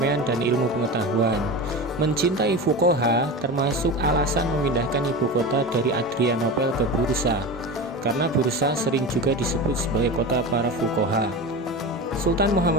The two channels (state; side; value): normal; both; correlation 0.27